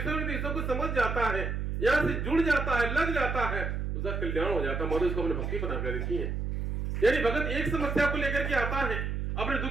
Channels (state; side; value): noise; right; hum, 2 dB below the sound